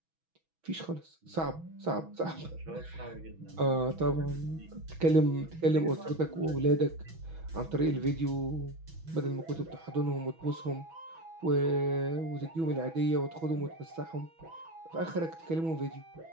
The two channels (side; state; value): left; late; 6.1 ms